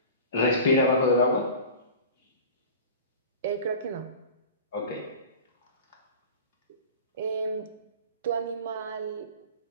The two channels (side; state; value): both; inverted; correlation -0.36